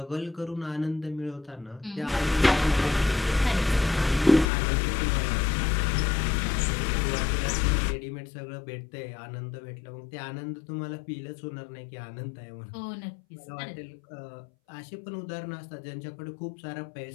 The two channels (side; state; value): right; drops out; at 4.5 s